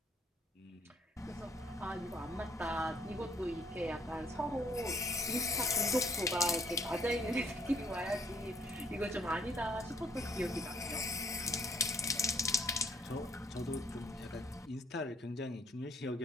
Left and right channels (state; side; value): normal; both; correlation 0.64